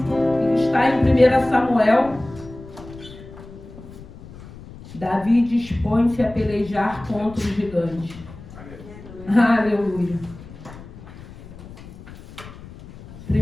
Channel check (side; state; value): left; noise; rumble, 17 dB below the sound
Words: está em 1 Samuel. Davi dispõe-se a pelejar contra o gigante. Aleluia.